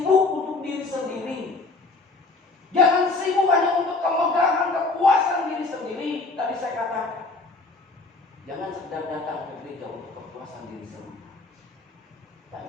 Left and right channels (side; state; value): right; quieter; 3.5 dB